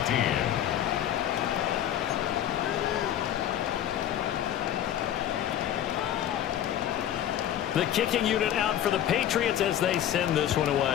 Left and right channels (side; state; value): right; quieter; 11.0 dB